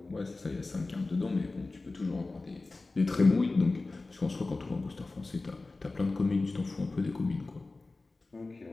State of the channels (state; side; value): quieter; right; 3.4 dB